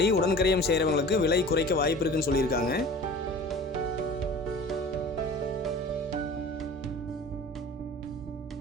உடன்கரையம் செய்கிறவங்களுக்கு விலை குறைக்க வாய்ப்பு இருக்குன்னு சொல்லியிருக்காங்க.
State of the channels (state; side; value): normal; both; correlation 0.41